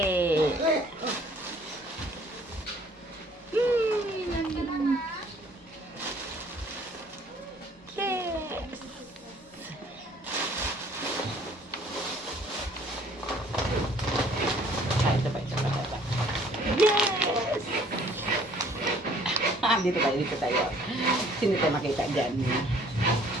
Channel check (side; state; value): both; normal; correlation 0.58